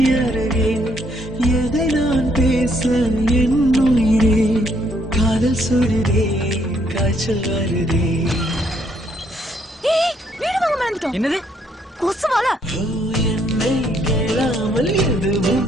எதை நான் பேச என் உயிரே காதல் சுடுதே காய்ச்சல் வருதே. என்னது கொசுவால என்னை கேளாமல்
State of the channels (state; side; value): normal; both; correlation 0.70